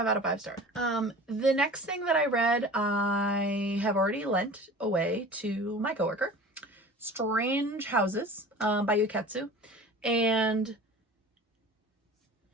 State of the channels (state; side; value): normal; both; correlation 0.40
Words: out of 5 stars. The next thing that I read, I have already lent away to my coworker. Strange Houses by Yuketsu. And